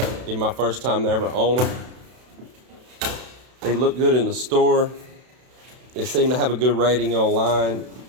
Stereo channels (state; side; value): late; left; 32 ms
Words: my first time to ever own them. They look good in the store. They seem to have a good rating online.